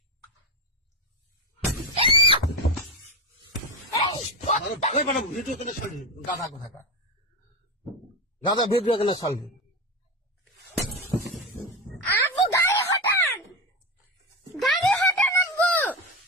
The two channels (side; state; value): both; normal; correlation 0.17